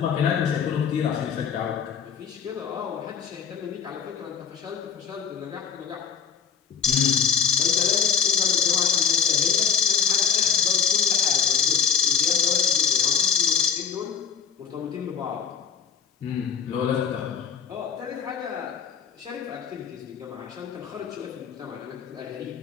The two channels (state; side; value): quieter; right; 7.7 dB